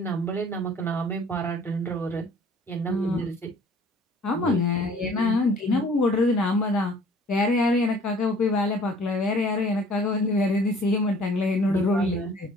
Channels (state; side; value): normal; both; correlation 0.53